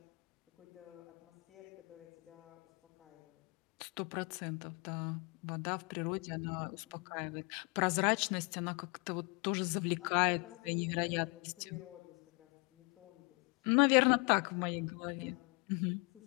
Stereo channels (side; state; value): right; quieter; 31.5 dB